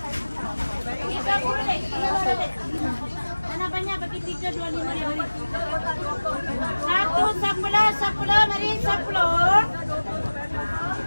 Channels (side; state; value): both; inverted; correlation -1.00